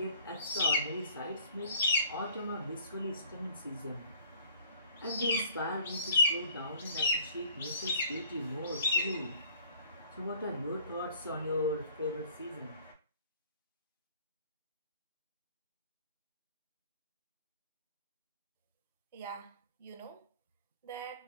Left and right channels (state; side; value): inverted; both; correlation -0.53